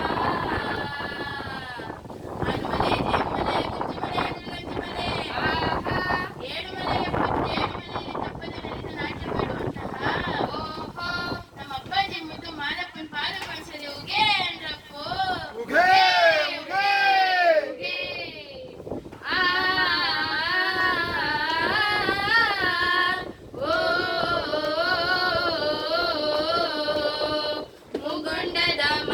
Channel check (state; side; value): identical; both; correlation 1.00